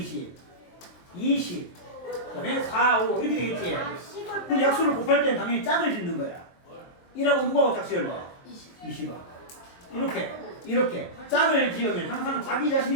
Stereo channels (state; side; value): late; right; 23 ms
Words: 20, 그다음에 4, 5 이렇게 되겠지. 그럼 약수를 곱할 때는 당연히 짝을 짓는 거야. 1하고 누구하고 짝 지을래? 20아. 이렇게 짝을 지으면 항상 자기